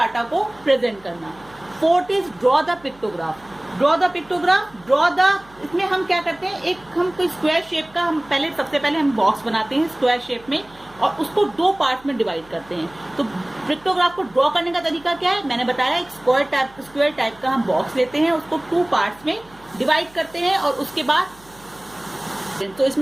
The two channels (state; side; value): noise; right; hum, 26 dB below the sound